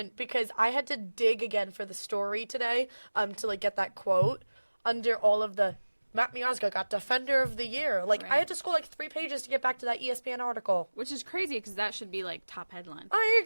because I had to dig again for the story today to, like, get that quote under all of the Matt Miazga got Defender of the Year. Like, I Right. had to scroll, like, 3 pages to get back to that ESPN article. Which is crazy because that should be, like, top headline. I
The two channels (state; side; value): inverted; both; correlation -1.00